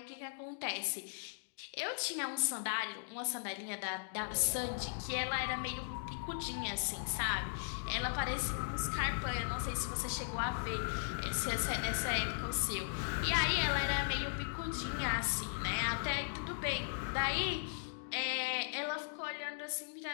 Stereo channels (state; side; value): silent; right; digital silence